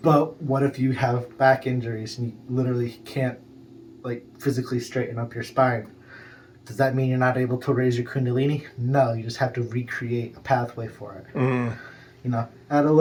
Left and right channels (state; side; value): identical; both; correlation 1.00